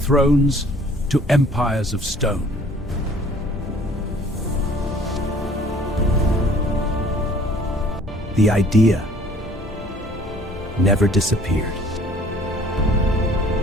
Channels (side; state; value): both; normal; correlation 0.54